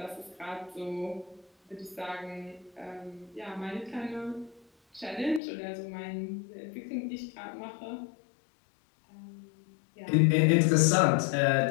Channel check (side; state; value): right; drops out; at 5.4 s